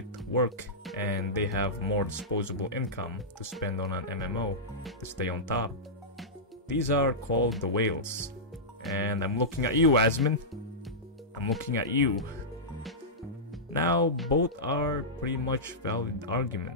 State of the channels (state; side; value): normal; both; correlation -0.13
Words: work and they have more disposable income to spend on an MMO to stay on top. These are called the whales. And I'm looking at you, Asmin. I'm looking at you. Now, both are pretty much valid